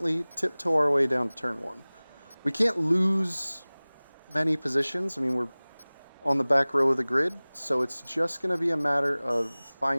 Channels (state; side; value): inverted; both; correlation -1.00